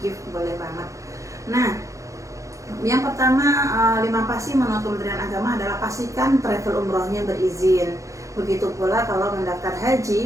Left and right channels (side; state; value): left; late; 0.15 ms